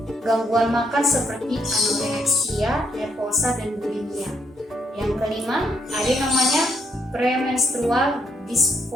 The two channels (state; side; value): normal; both; correlation 0.74